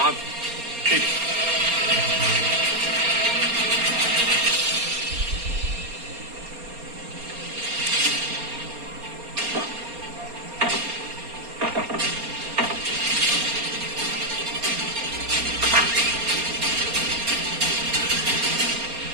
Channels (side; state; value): left; late; 4.3 ms